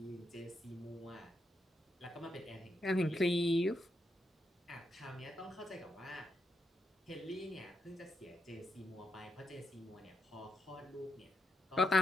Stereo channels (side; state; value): both; normal; correlation 0.82